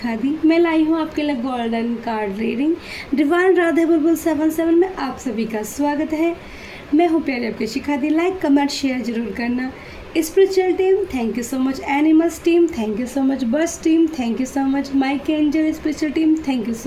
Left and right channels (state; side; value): identical; both; correlation 1.00